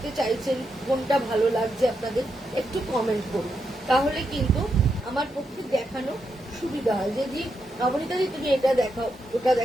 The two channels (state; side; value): normal; both; correlation 0.83